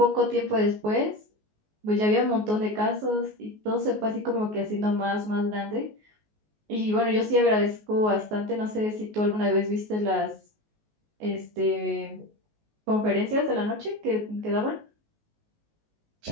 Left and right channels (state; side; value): late; left; 19 ms